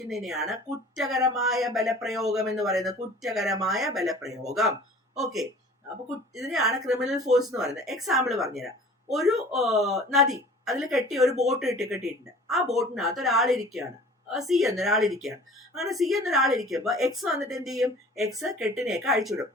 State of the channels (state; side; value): normal; both; correlation 0.46